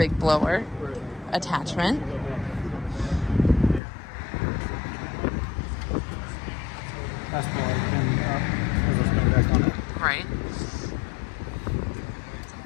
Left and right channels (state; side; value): drops out; right; at 3.8 s